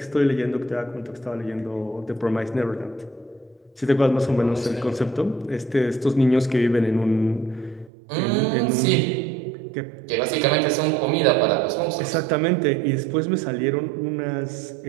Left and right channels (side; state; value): left; drops out; at 7.9 s